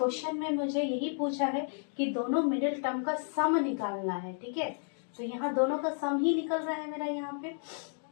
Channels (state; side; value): silent; right; 56 dB below the other